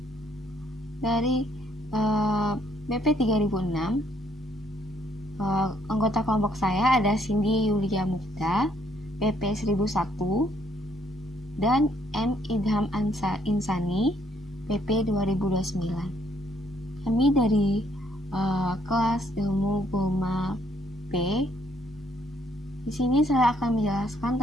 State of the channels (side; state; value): both; normal; correlation 0.69